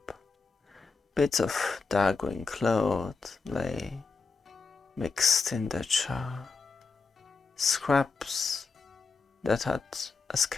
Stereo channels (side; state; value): right; quieter; 4.4 dB